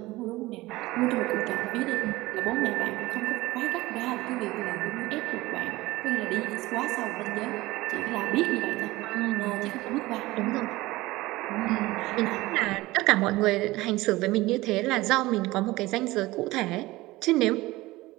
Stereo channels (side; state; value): left; quieter; 19.3 dB